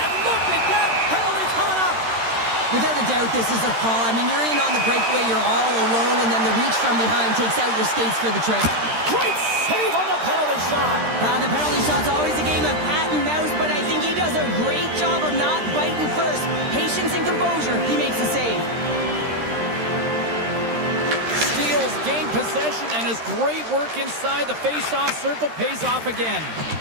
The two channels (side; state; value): left; late; 13 ms